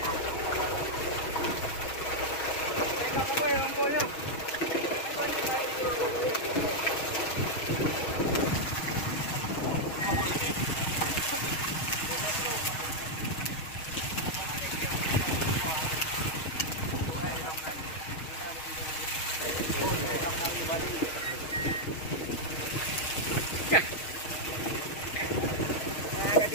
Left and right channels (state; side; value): late; right; 6.3 ms